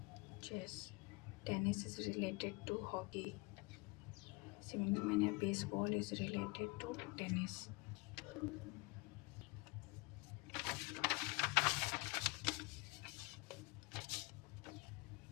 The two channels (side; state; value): right; quieter; 26.6 dB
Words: Tennis is related to hockey. Similar manner baseball is related to tennis.